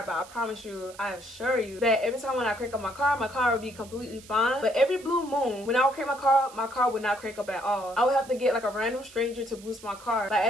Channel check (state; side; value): noise; right; hiss, 20 dB below the sound